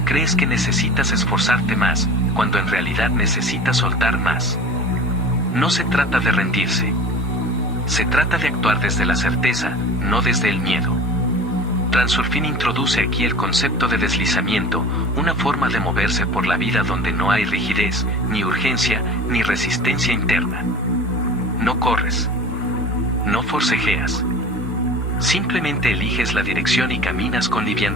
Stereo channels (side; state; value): both; normal; correlation 0.38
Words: crees que necesitas esforzarte más, cuando en realidad necesitas soltar más. No se trata de rendirse. Se trata de actuar desde la certeza, no desde el miedo. Transurfing introduce aquí el concepto de deslizamiento, una forma de moverse por la vida donde no hay rigidez, ni urgencia, ni resistencia interna. No corres. No forcejeas. Simplemente eliges la dirección y caminas con